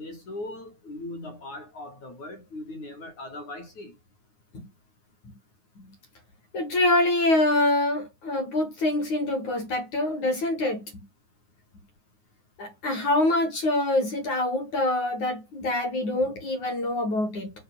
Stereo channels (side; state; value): right; late; 9.5 ms